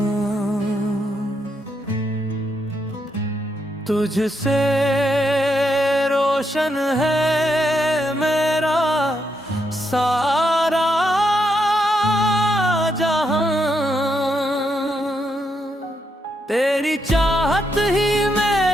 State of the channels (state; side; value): normal; both; correlation 0.80